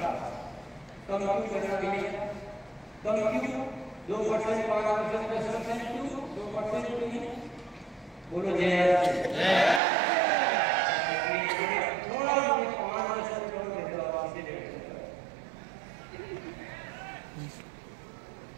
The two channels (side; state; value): left; drops out; at 9.8 s